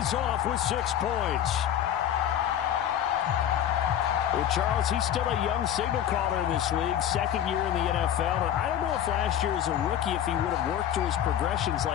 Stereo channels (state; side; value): quieter; right; 10.3 dB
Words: off with 6 points. Well, Charles, he's still a young signal caller in this league, 2nd year in the NFL. And I don't know if last year as a rookie, if he would have worked through his progressions